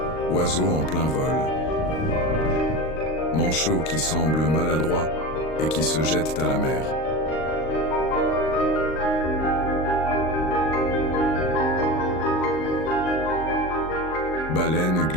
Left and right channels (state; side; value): late; right; 38 ms